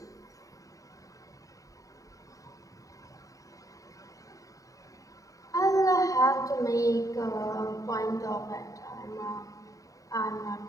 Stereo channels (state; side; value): late; right; 0.16 ms